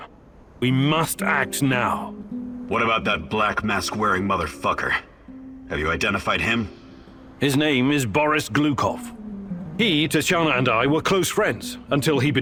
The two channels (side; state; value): both; identical; correlation 1.00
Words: We must act now. What about that black mask-wearing motherfucker? Have you identified him? His name is Boris Glukov. He, Tatiana, and I were close friends until he